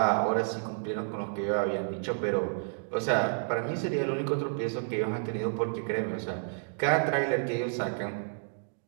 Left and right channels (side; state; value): left; silent; digital silence